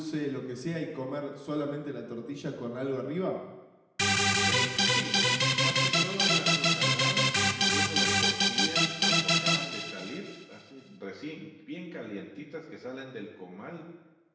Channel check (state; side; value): identical; both; correlation 1.00